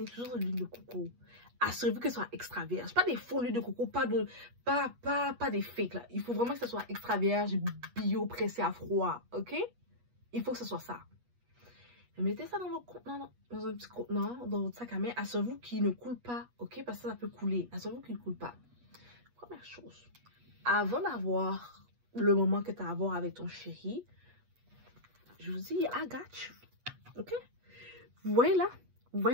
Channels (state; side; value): late; left; 8.3 ms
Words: toujours de l'huile de coco. Assurez-vous que ce soit extra vierge. Pas des faux huiles de coco, pas des fakes là. Il faut vraiment que ce soit extra vierge, bio, pressé à froid, ok? Il faut que ce soit ça. Mettez ça dans votre contenant, dans un petit contenant, dans votre sac à main. Assurez-vous qu'il ne coule pas, ok? Parce que ça peut couler. Assurez-vous qu'il ne coule pas. Première chose, avant d'avoir le moment que tu as à avoir avec ton chéri, je vous dis, I got you, ok? Vous voyez là? Vous